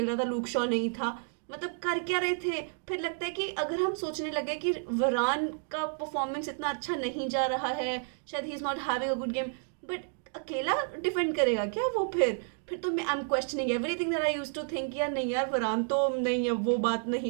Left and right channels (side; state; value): left; silent; 57 dB below the other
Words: रहा था, लूक शॉ नहीं था. मतलब कर क्या रहे थे? फिर लगता है कि अगर हम सोचने लगे कि वरान का परफॉर्मेंस इतना अच्छा नहीं जा रहा है, शायद he is not having a good game, but अकेला डिफेंड करेगा क्या वो? फिर तो मैं I am questioning everything that I used to think. यार नहीं यार, वरान तो नहीं, अब वो बात